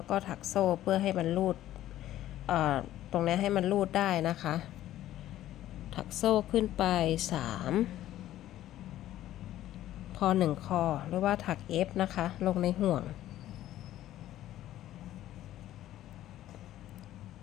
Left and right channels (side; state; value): right; quieter; 13.4 dB